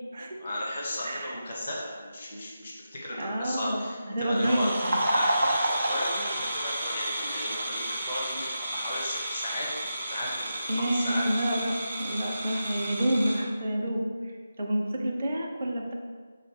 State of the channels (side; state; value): both; inverted; correlation -0.89